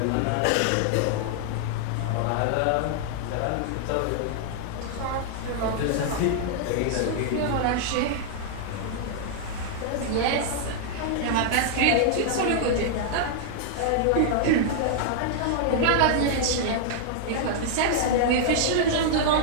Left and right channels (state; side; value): different; both; correlation -0.01